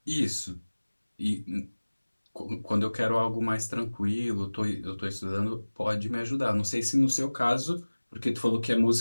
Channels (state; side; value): inverted; both; correlation -1.00